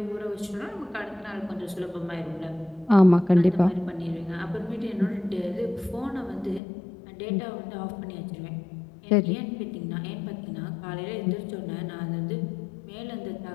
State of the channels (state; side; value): drops out; right; at 6.6 s